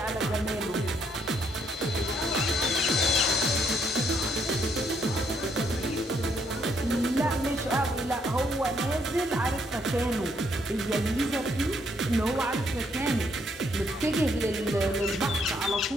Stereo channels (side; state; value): both; normal; correlation 0.71